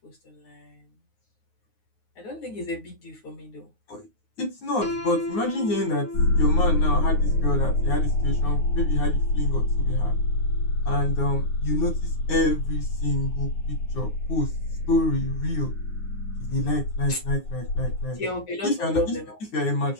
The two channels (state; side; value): late; right; 9.5 ms